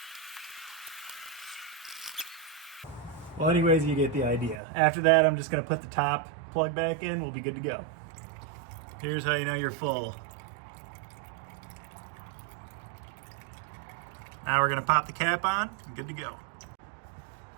Well, anyways, you get the idea. After that, I'm just gonna put the top plug back in. We'll be good to go. Here's how you know you're full. Now we're gonna pop the cap on and good to go.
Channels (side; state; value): left; drops out; at 4.6 s